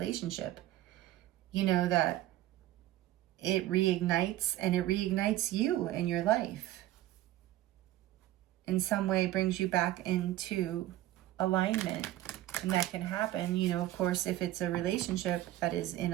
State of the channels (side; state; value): left; quieter; 14.6 dB